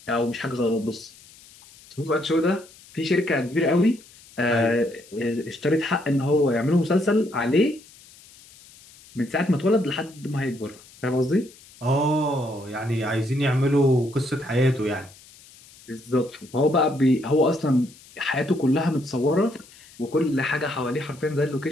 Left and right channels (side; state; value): left; noise; hiss, 23 dB below the sound